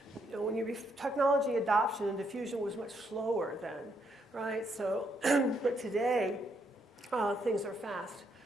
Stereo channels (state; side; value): normal; both; correlation 0.75